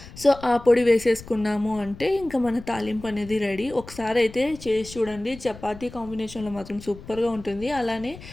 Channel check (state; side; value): noise; left; rumble, 17 dB below the sound